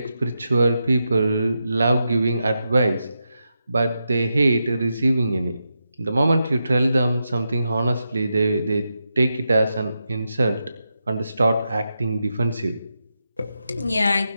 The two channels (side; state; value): both; inverted; correlation -0.87